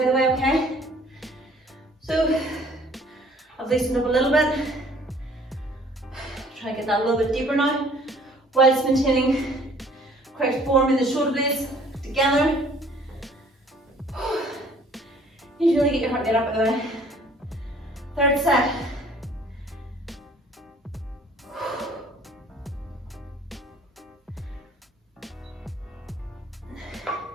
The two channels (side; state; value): both; normal; correlation 0.56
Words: the way, okay? So, I've loosened up a little bit. Try to get that a little bit deeper now, whilst maintaining correct form in the shoulder blades together. You need to really get your heart rate up, by the way. Third set.